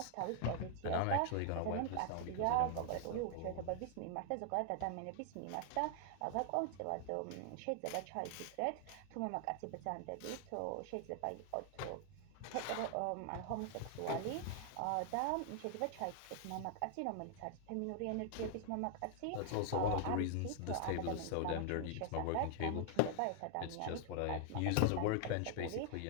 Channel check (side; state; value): both; different; correlation 0.00